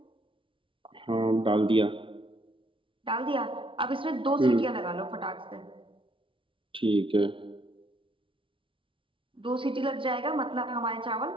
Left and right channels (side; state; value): left; late; 0.25 ms